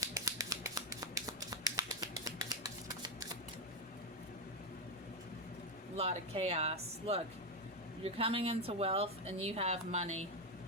A lot of chaos. Look, you're coming into wealth and you have money.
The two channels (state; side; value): normal; both; correlation 0.07